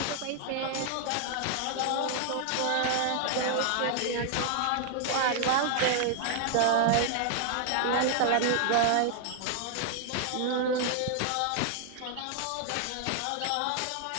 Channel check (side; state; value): both; different; correlation 0.00